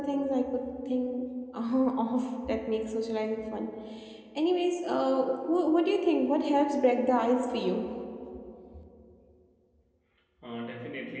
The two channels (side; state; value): both; identical; correlation 1.00